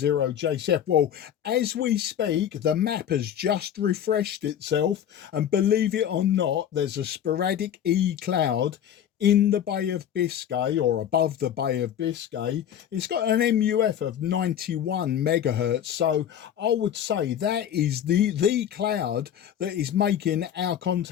Well, as we speak, the map has just refreshed itself, and believe it or not, there's a sporadic E cloud in the Bay of Biscay, or above the Bay of Biscay. It's got an MUF of 91 megahertz. So I would say that is the cloud that is making our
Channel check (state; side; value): quieter; right; 9.8 dB